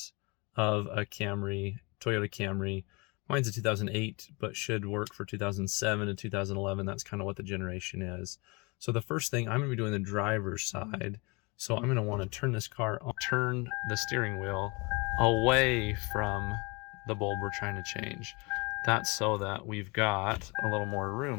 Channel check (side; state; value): right; quieter; 28.2 dB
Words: of a Camry, Toyota Camry. Mine's a 2008, but should work for 2007 and 2011. That's kind of what the generation is. So the first thing, I'm going to be doing the driver's side. So I'm going to want to turn this car on, turn the steering wheel away from the bulb we're trying to change. That's so that we've got a little more